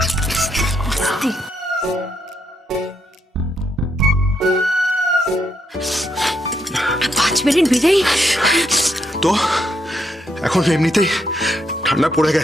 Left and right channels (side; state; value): both; normal; correlation 0.77